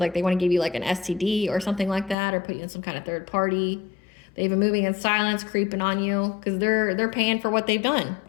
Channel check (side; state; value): right; drops out; at 2.1 s